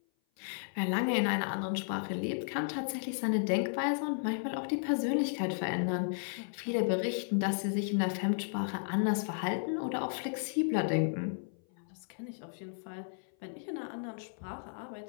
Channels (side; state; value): right; silent; 55 dB below the other